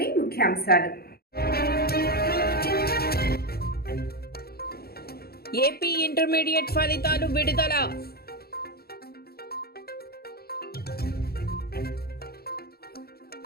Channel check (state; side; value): late; right; 0.45 ms